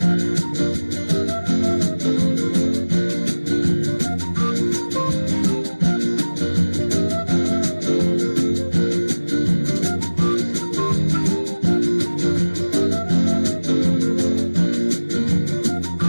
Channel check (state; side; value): inverted; both; correlation -1.00